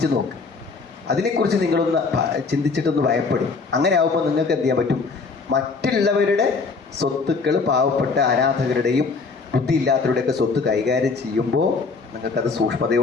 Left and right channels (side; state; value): right; quieter; 4.5 dB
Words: നോക്ക്. അതിനെക്കുറിച്ച് നിങ്ങളൊന്ന് ചിന്തിച്ചിട്ടൊന്ന് ഭയപ്പെടും. അങ്ങനെ ആകുമ്പോൾ നിങ്ങൾക്ക് എന്ത് ചെയ്യാൻ പറ്റും, മറ്റുള്ളവരുടെ സ്വത്തുക്കൾ പാവപ്പെട്ട അനാഥകരുടെയും ബുദ്ധിയില്ലാത്തവരുടെയൊക്കെ സ്വത്ത് കൈകാര്യം ചെയ്യുമ്പോൾ നിങ്ങൾക്കത്